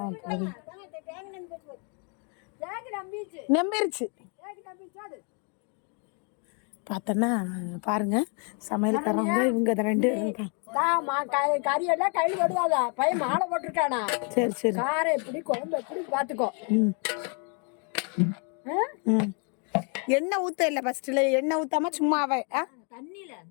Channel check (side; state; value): right; quieter; 38.0 dB